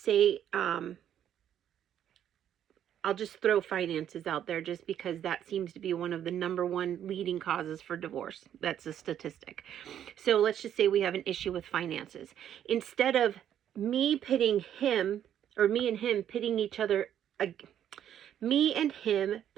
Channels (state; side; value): quieter; left; 10.2 dB